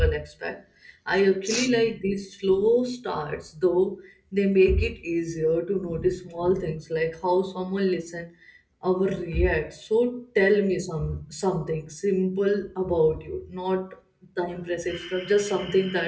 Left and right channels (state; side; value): identical; both; correlation 1.00